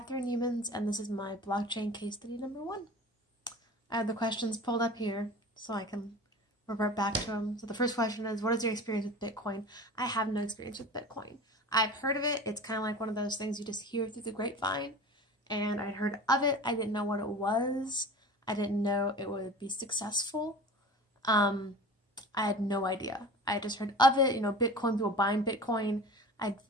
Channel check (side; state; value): both; normal; correlation 0.37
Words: Humans and this is my blockchain case study number 1. I have the questions pulled up here so I can revert back to them. So the first question is, what is your experience with Bitcoin? I have no experience with Bitcoin. I've heard of it. It's kind of like one of those things you just hear through the grapevine. And I heard of it. I didn't know what it was. I didn't know it would be successful. I had no idea. I just heard of it, Bitcoin, people buying Bitcoin.